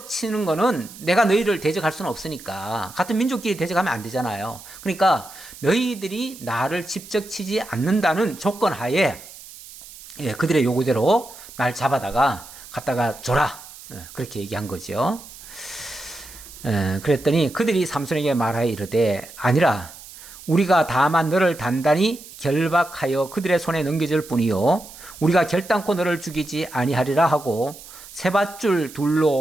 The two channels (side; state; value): right; noise; hiss, 17 dB below the sound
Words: 치는 거는 내가 너희를 대적할 수는 없으니까 같은 민족끼리 대적하면 안 되잖아요. 그러니까 너희들이 나를 직접 치지 않는다는 조건 하에 그들의 요구대로 날 잡아다가 갖다가 줘라. 그렇게 얘기한 거죠. 그랬더니 그들이 삼손에게 말하여 이르되 아니라 우리가 다만 너를 단단히 결박하여 그들의 손에 넘겨줄 뿐이요 우리가 결단코 너를 죽이지 아니하리라 하고 세밧줄